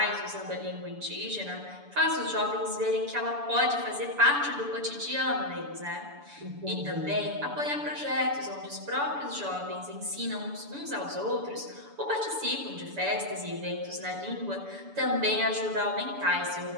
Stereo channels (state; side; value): late; left; 6.9 ms